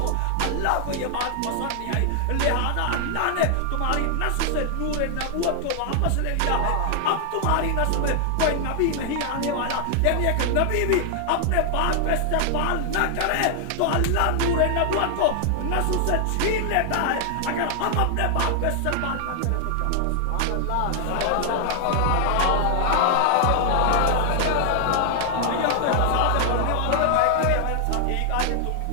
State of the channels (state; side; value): different; both; correlation 0.00